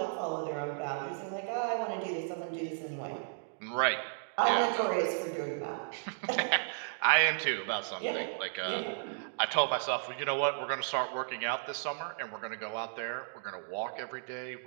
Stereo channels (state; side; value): silent; left; digital silence